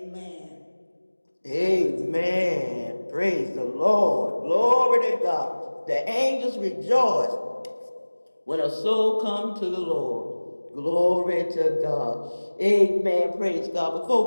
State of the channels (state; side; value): inverted; both; correlation -1.00